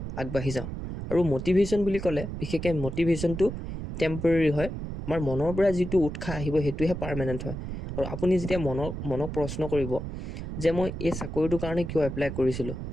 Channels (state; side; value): noise; right; rumble, 7 dB below the sound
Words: আগবাঢ়ি যাওঁ। আৰু মটিভেশ্যন বুলি ক'লে বিশেষকৈ মটিভেশ্যনটো টেম্পৰেৰী হয়, আমাৰ মনৰ পৰা যিটো উৎসাহ আহিব সেইটোহে পাৰ্মানেণ্ট হয়। আৰু আপুনি যেতিয়া মনক প্ৰশ্ন কৰিব যে মই এই চাকৰিটোৰ কাৰণে কিয় এপ্লাই কৰিছিলোঁ,